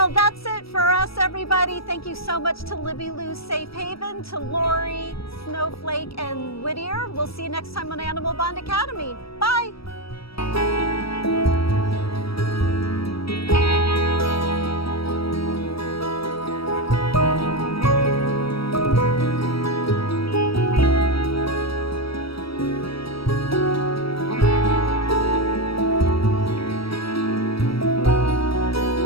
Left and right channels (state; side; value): late; right; 0.76 ms